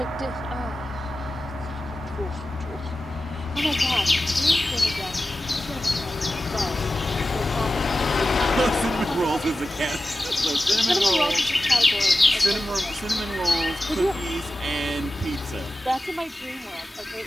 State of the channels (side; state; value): both; normal; correlation 0.94